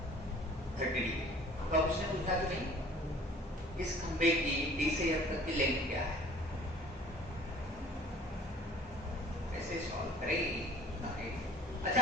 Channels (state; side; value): normal; both; correlation 0.51